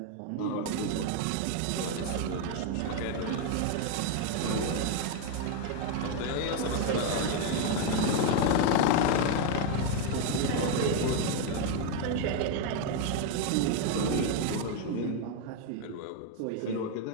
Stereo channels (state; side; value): different; both; correlation 0.01